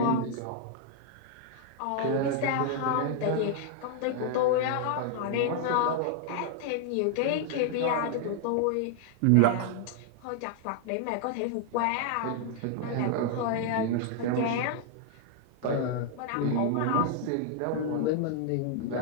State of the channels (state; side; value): different; both; correlation 0.00